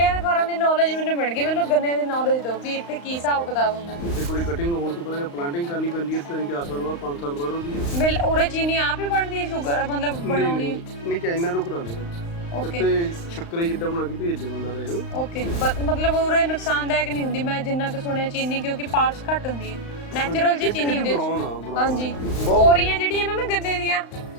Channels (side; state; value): right; late; 35 ms